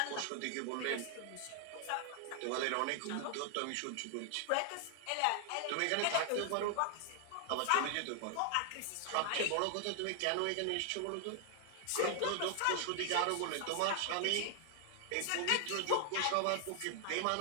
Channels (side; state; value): both; different; correlation 0.00